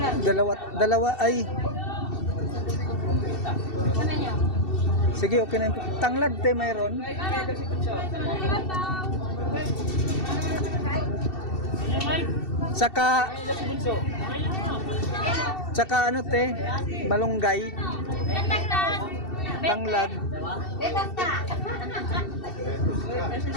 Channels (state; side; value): late; right; 2.7 ms